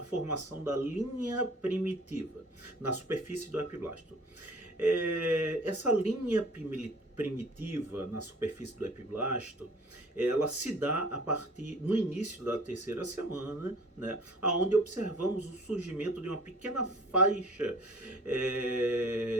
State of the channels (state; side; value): normal; both; correlation 0.48